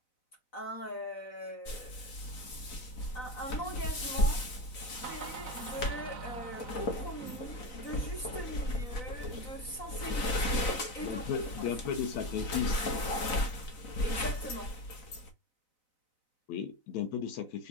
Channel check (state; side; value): late; right; 4.0 ms